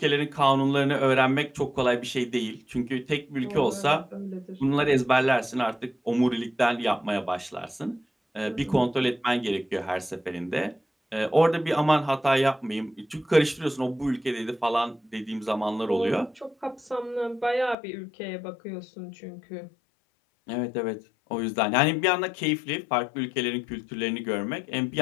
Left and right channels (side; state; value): right; drops out; at 17.8 s